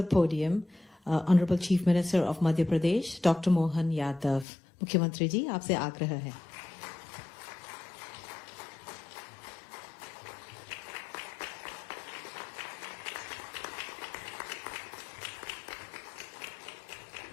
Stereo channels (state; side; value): drops out; right; at 4.5 s